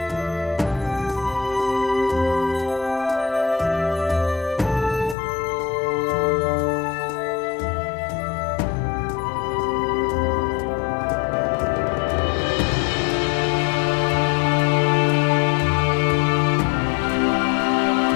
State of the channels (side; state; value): right; drops out; at 5.2 s